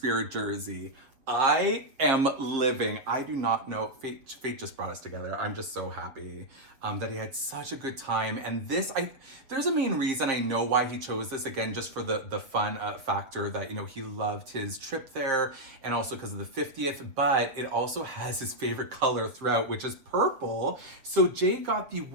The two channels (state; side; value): late; left; 7.3 ms